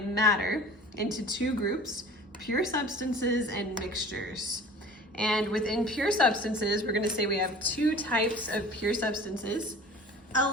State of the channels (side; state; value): both; normal; correlation 0.43